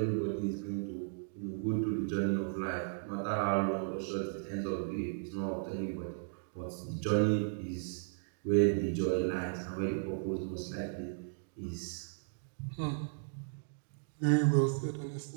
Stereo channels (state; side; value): silent; left; digital silence